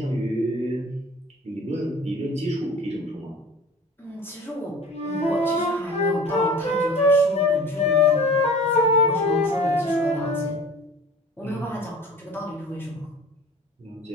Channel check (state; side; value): normal; both; correlation 0.42